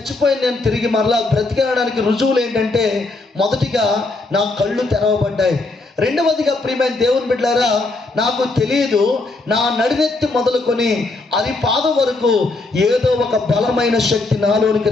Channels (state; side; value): quieter; right; 3.3 dB